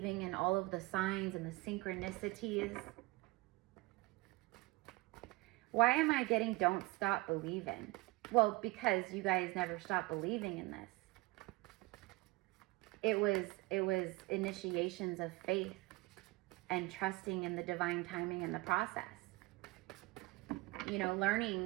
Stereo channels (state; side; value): quieter; left; 21.7 dB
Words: in all of the signs and the synchronicities. Why am I getting don't stop believing? Well, because you guys never stopped believing in this. It was initiations of faith and trusting in the divine timing in the process. You know,